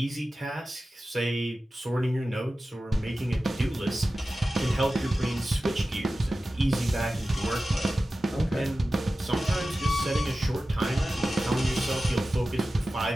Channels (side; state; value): both; normal; correlation 0.95